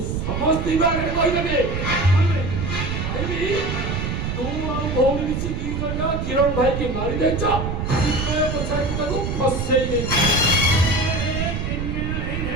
ସମସ୍ତଙ୍କ ଆଗରେ କହିଦେବି କହିବି ତୁ ଆଉ ଭଉଣୀ ମିଶି ଦି ଜଣ କିରଣ ଭାଇକି ମାରି ଦେଇଛ, ତାକୁ ଫସେଇ ଦେଇଛ।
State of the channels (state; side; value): noise; right; rumble, 3 dB below the sound